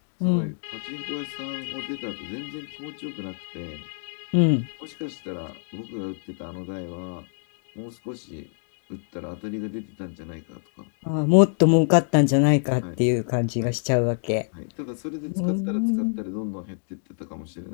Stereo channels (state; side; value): silent; right; digital silence